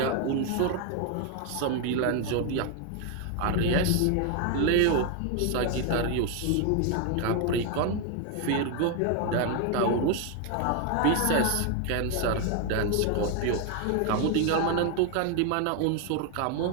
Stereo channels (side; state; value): both; different; correlation 0.01